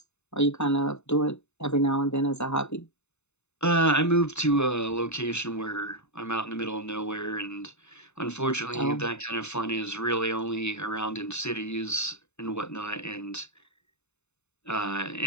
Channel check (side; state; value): right; late; 0.82 ms